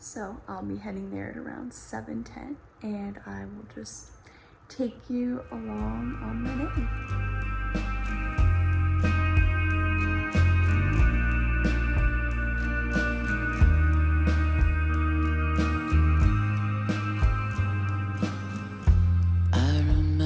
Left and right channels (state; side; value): identical; both; correlation 1.00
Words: I'll be heading there at around 7:10 and I will just take you along on my day.